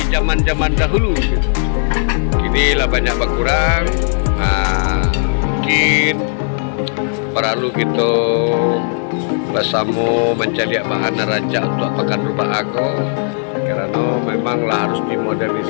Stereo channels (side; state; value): right; silent; digital silence